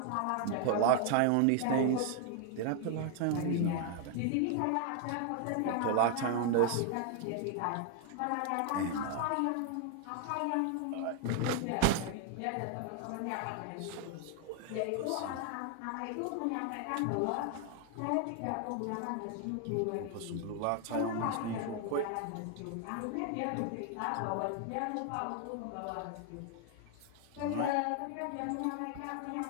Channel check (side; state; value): both; different; correlation 0.00